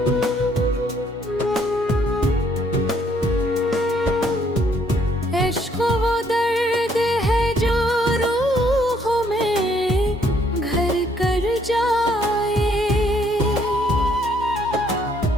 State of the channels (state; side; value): normal; both; correlation 0.67